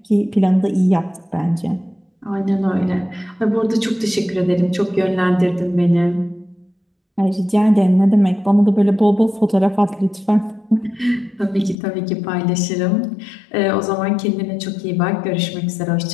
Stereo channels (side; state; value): right; drops out; at 11.8 s